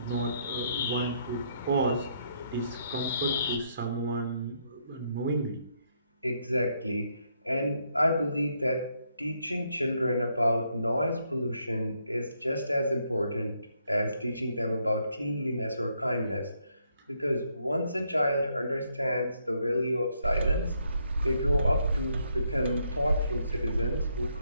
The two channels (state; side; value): inverted; both; correlation -0.75